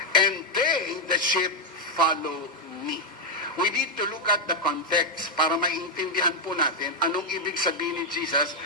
and they, the sheep, follow me. We need to look at the context para maintindihan po natin anong ibig sabihin ni Jesus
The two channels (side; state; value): both; normal; correlation 0.02